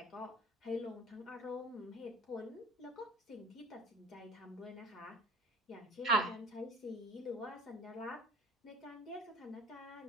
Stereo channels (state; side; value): normal; both; correlation 0.45